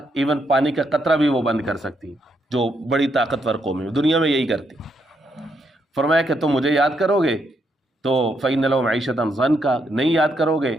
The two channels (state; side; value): normal; both; correlation 0.78